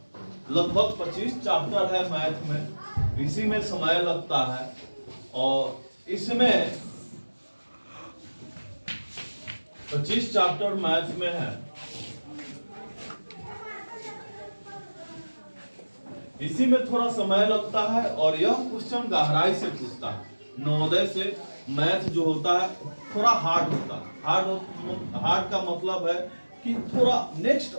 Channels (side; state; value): both; inverted; correlation -1.00